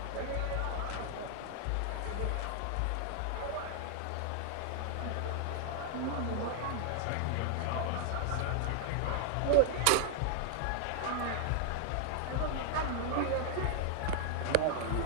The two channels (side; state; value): both; different; correlation 0.00